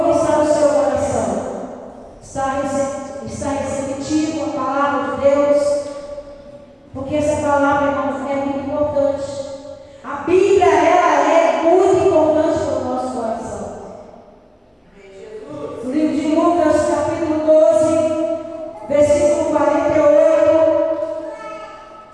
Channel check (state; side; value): identical; both; correlation 1.00